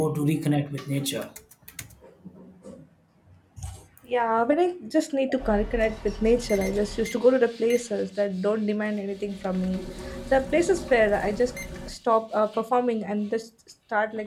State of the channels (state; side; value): identical; both; correlation 1.00